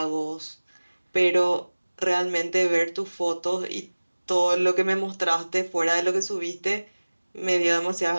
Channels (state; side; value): inverted; both; correlation -1.00